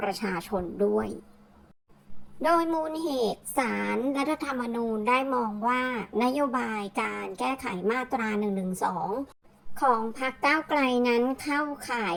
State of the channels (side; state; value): both; identical; correlation 1.00